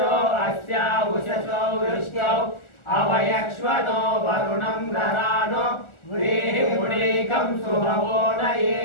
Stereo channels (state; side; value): late; right; 1.4 ms